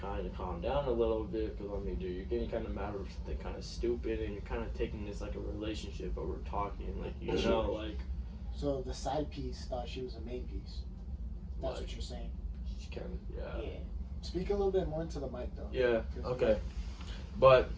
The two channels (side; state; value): both; identical; correlation 1.00